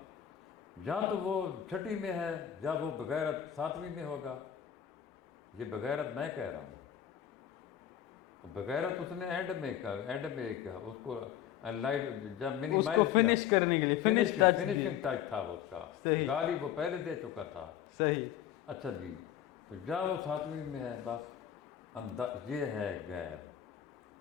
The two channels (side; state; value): right; quieter; 10.3 dB